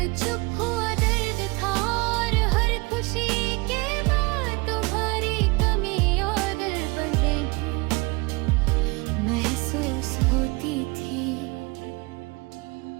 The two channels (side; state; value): left; quieter; 26.5 dB